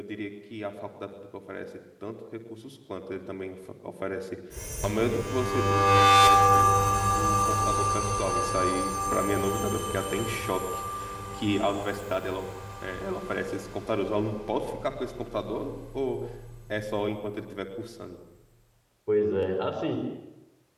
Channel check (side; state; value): both; identical; correlation 1.00